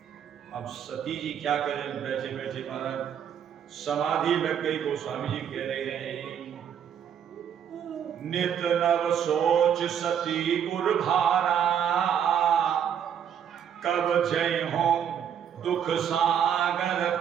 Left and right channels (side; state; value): left; quieter; 8.7 dB